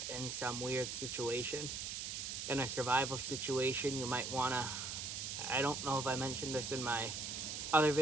in some weird situation. In a survival situation, you might want to, I don't know if I mentioned this in my other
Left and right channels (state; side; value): noise; right; hiss, 4 dB below the sound